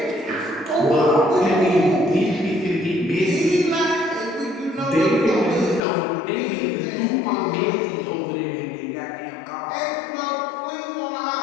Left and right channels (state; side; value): drops out; right; at 5.9 s